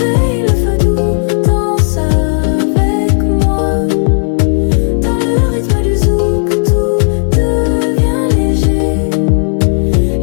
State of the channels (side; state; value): right; silent; digital silence